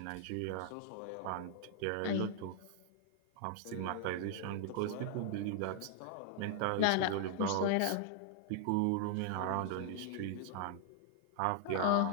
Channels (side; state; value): both; different; correlation -0.01